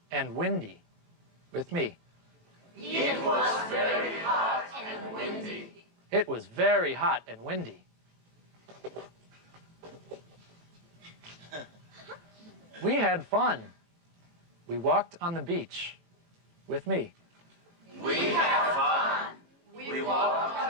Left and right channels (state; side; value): late; left; 23 ms